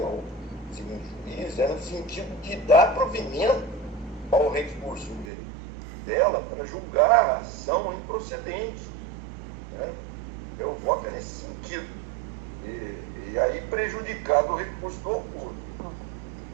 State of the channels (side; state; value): left; drops out; at 5.2 s